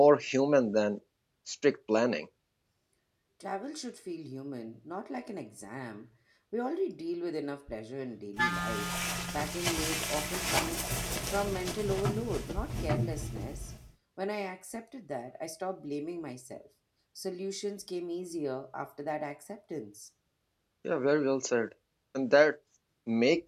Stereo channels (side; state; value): both; identical; correlation 1.00